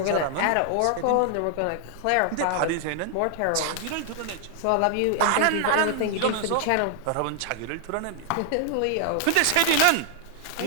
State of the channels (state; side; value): different; both; correlation -0.01